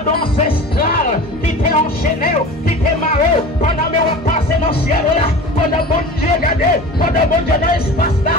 ancestrales. Qui t'est enchaîné. Qui t'est maré. Pendant que on passe dans le ciel là. Pendant bon Dieu regardez. Pendant bon Dieu dans l'espace là.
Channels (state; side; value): normal; both; correlation 0.36